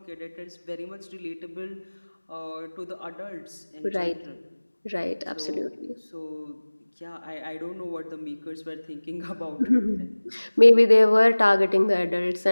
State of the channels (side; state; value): both; inverted; correlation -1.00